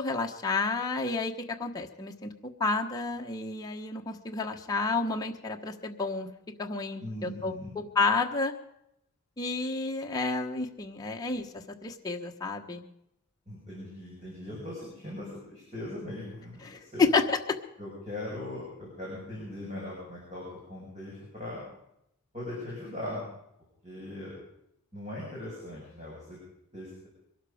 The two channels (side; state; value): right; quieter; 3.2 dB